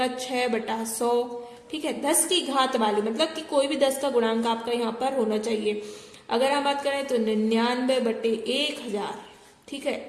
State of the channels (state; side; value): identical; both; correlation 1.00